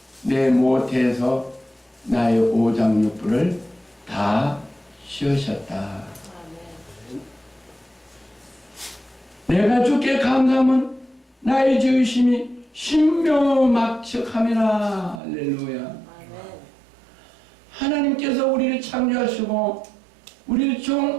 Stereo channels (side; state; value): left; drops out; at 15.2 s